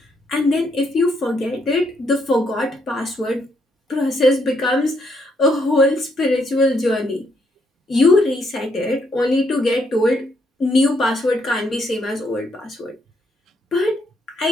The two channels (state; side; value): normal; both; correlation 0.74